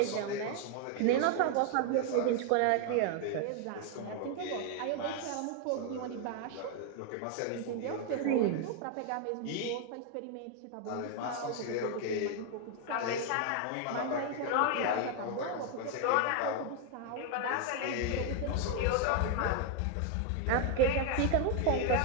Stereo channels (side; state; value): both; different; correlation 0.00